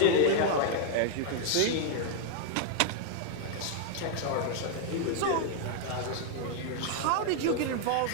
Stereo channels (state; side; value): different; both; correlation 0.00